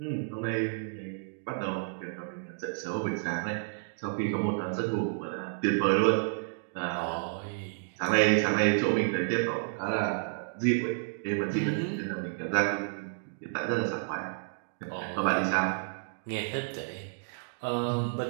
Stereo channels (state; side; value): silent; left; digital silence